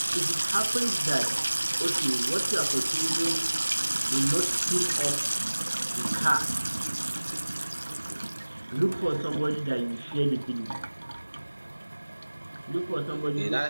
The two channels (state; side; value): inverted; both; correlation -1.00